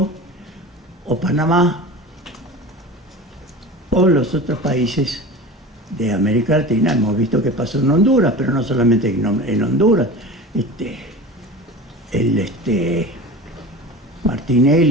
o Panamá o los otros países de América Latina. Hemos visto que pasó en Honduras, pero no solamente en Honduras.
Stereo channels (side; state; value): both; normal; correlation 0.34